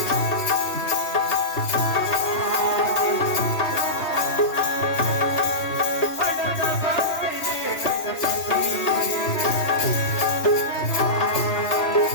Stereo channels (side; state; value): right; late; 3.3 ms